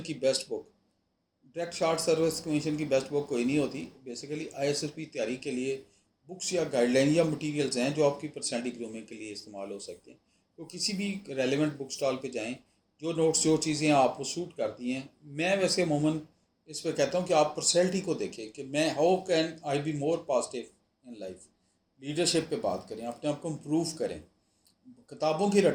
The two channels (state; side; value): identical; both; correlation 1.00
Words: best book. Direct shot service commission की best book कोई नहीं होती। बेसिकली आईएसएसपी तैयारी के लिए बुक्स या गाइडलाइन या मटेरियल्स हैं जो आपकी पर्सनैलिटी ग्रूमिंग के लिए इस्तेमाल हो सकते हैं। तो किसी भी रेलिवेंट बुक स्टॉल पे जाएं, जो नोट्स जो चीज़ें आपको सूट करती हैं। मैं वैसे अमूमन इस पर कहता हूँ कि आप पर्सनैलिटी को देखें कि मैं how can I be more positive in life. Leadership पे बात करें, अपने आप को इम्प्रूव करें। किताबों की